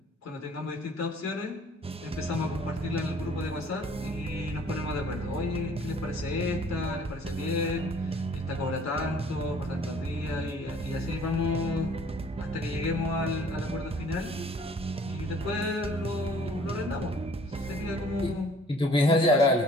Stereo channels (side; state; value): both; normal; correlation 0.55